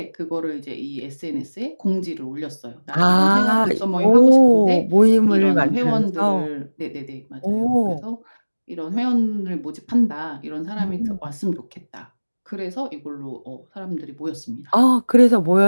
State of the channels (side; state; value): both; inverted; correlation -1.00